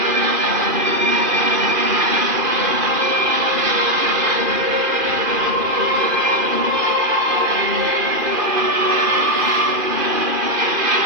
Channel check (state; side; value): late; left; 2.4 ms